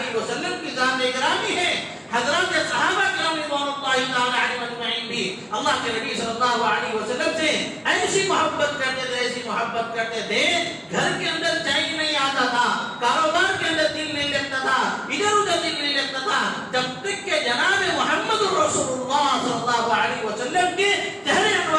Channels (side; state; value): both; identical; correlation 1.00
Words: وسلم کی ذات گرامی ہے۔ حضرات صحابہ کرام رضوان اللہ تعالی علیہم اجمعین بھی اللہ کے نبی صلی اللہ علیہ وسلم سے ایسی محبت کرتے تھے، ایسی محبت کرتے تھے، گھر کے اندر چین نہیں آتا تھا، کاروبار کے اندر دل نہیں لگتا تھا، ادھر ادھر دل نہیں لگتا تھا، جب تک کہ جناب محمد رسول اللہ صلی اللہ علیہ وسلم کے چہرے